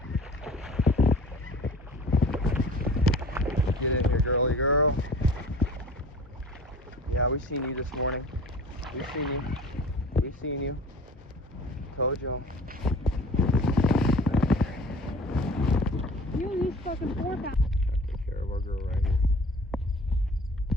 Get in here, girly girl. Yeah, we seen you this morning. We've seen you. We've seen you. Told y'all. You use fucking fork out. Take care of our girl right here.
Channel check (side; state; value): both; normal; correlation 0.44